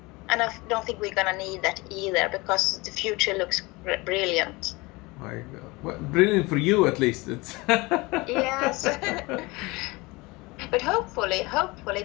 And I don't think we're going to need that either, because the future looks brilliant. My God. Well, brilliant for you, at least. It's yes. But hopefully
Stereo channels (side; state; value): right; quieter; 23.9 dB